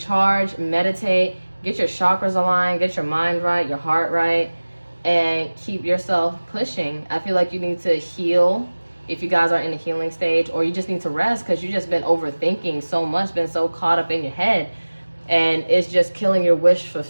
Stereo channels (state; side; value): inverted; both; correlation -1.00